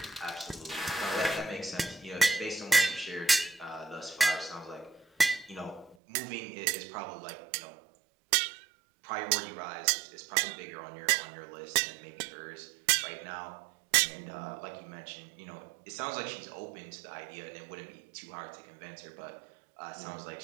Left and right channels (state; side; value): drops out; left; at 6.0 s